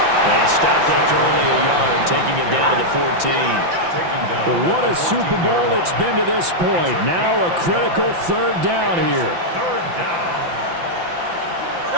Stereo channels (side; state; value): left; late; 5.8 ms